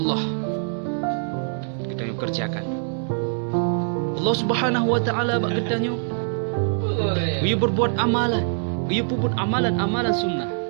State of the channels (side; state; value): left; silent; digital silence